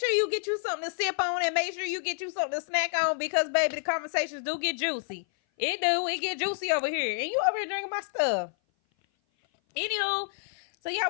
you get you something to sip on, and make sure you get you something to snack on, because baby, the conversations do get juicy. It get juicy over here, and you over here drinking my stuff. Anywho, so yeah,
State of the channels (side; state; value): right; silent; 56 dB below the other